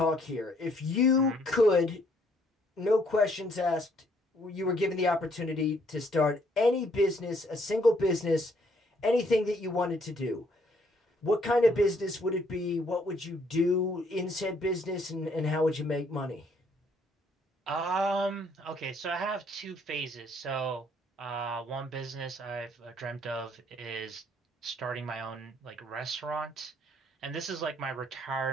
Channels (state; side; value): normal; both; correlation 0.67